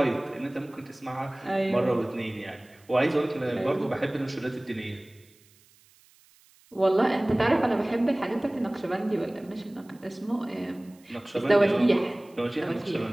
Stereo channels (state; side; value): noise; right; hiss, 30 dB below the sound